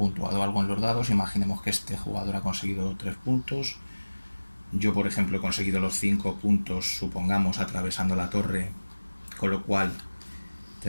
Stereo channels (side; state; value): both; inverted; correlation -1.00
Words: algo en los dados. Imaginemos que este jugador ha conseguido 3 puntos. Yo, por ejemplo, he conseguido los 5 puntos, supongamos, atravesando la torre, con lo cual